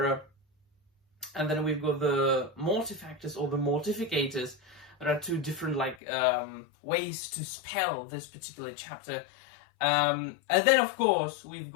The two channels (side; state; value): right; drops out; at 6.0 s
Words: and then we've got the Mortifactors or the Mortificators. There are 2 different like ways to spell this particular chapter. And then of course we've